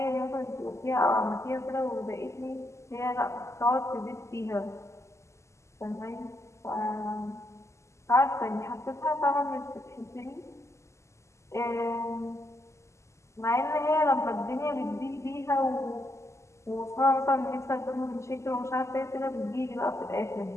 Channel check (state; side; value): late; right; 0.14 ms